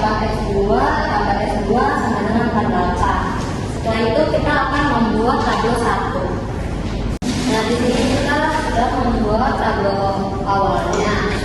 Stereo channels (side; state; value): both; identical; correlation 1.00